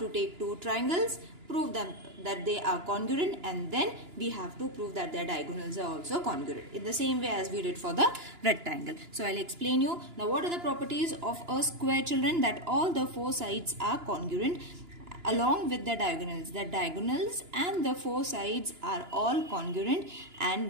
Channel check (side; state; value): left; late; 2.9 ms